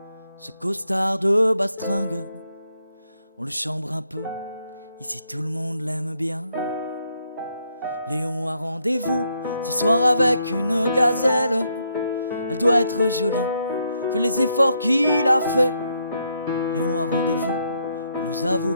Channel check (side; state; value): both; inverted; correlation -0.76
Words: ce costard de bastringue? On le chambre un peu, ici tout le monde l'aime bien. Léon a rendez-vous ce soir avec une gazelle. Elle doit être jolie, vu les efforts qu'il a fait. Léon a rendez-vous, il nous avoue